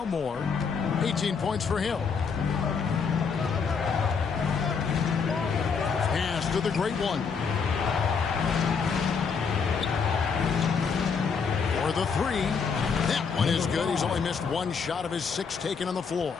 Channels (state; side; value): quieter; right; 5.7 dB